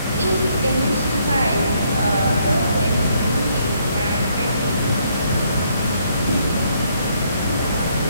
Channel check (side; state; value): both; inverted; correlation -0.70